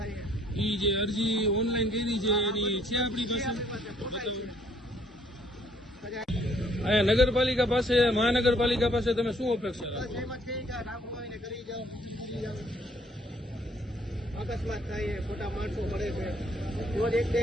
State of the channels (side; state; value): both; normal; correlation 0.64